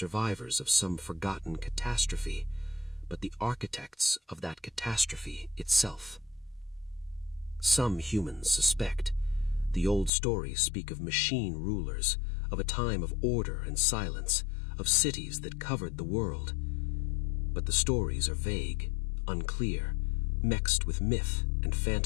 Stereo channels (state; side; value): drops out; right; at 10.1 s